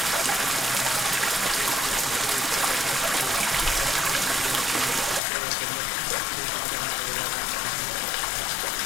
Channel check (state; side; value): drops out; right; at 5.2 s